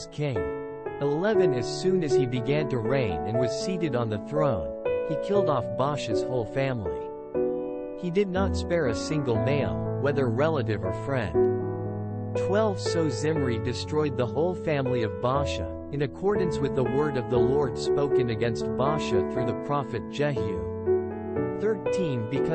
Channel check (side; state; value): both; identical; correlation 1.00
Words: king. 11 As soon as he began to reign and was seated on the throne, he killed off Baasha's whole family. He did not spare a single male, whether relative or friend. 12 So Zimri destroyed the whole family of Baasha, in accordance with the word of the Lord spoken against Baasha through the prophet Jehu. 13